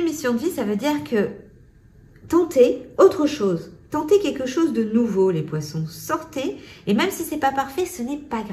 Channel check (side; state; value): both; identical; correlation 1.00